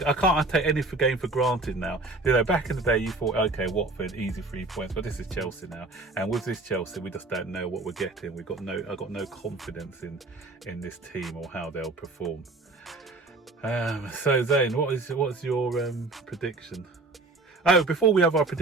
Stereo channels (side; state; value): left; quieter; 3.2 dB